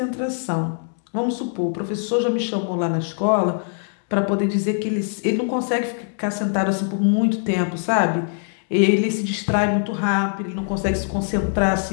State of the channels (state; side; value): silent; right; digital silence